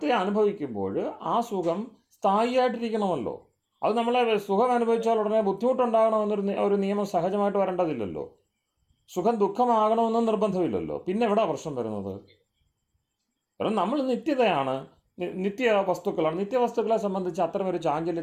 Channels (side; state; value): both; identical; correlation 1.00